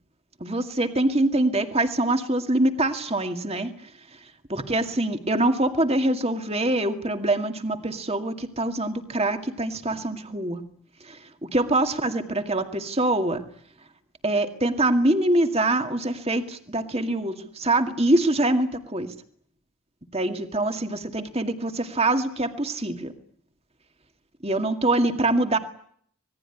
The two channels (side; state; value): both; normal; correlation 0.47